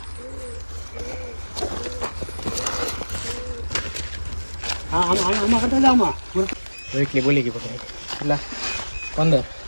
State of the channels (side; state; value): both; inverted; correlation -1.00